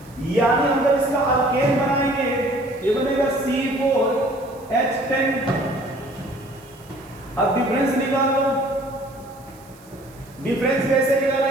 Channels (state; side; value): noise; right; hiss, 26 dB below the sound